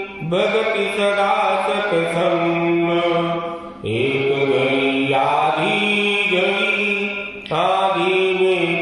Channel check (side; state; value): both; identical; correlation 1.00